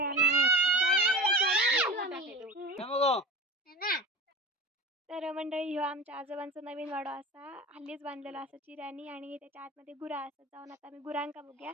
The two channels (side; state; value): both; normal; correlation 0.33